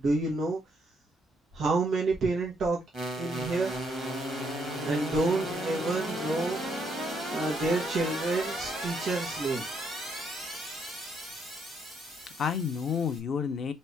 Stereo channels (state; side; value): normal; both; correlation 0.73